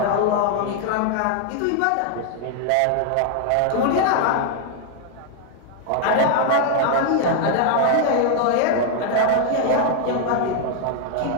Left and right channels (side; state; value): both; different; correlation 0.00